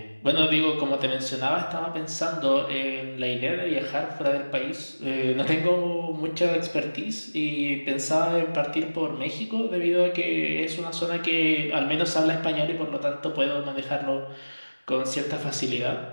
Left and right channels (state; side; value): inverted; both; correlation -1.00